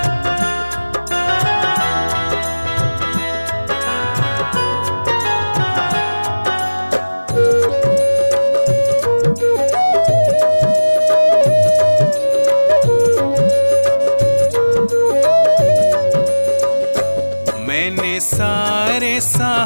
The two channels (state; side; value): inverted; both; correlation -1.00